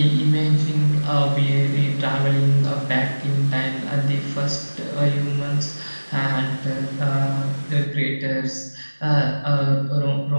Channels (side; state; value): both; inverted; correlation -1.00